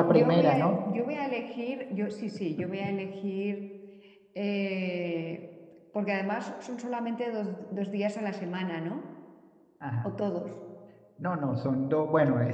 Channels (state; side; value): identical; both; correlation 1.00